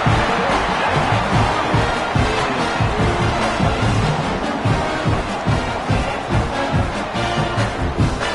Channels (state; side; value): identical; both; correlation 1.00